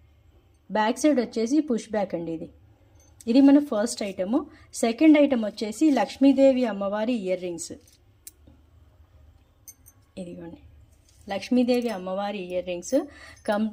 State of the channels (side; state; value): both; identical; correlation 1.00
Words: బ్యాక్ సైడ్ వచ్చేసి పుష్ బ్యాక్ అండి. ఇది మన ఫస్ట్ ఐటము. సెకండ్ ఐటమ్ వచ్చేసి లక్ష్మీదేవి అమ్మవారి ఇయర్ రింగ్స్. ఇదిగోండి, లక్ష్మీదేవి అమ్మవారి ఇయర్ రింగ్స్